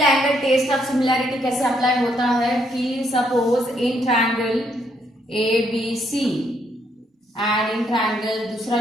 angle test of similarity कैसे अप्लाई होता है कि suppose in triangle ABC and in triangle दूसरा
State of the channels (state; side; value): normal; both; correlation 0.73